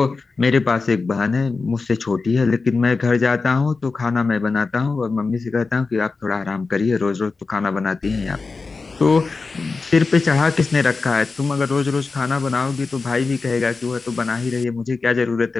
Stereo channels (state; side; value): quieter; right; 4.2 dB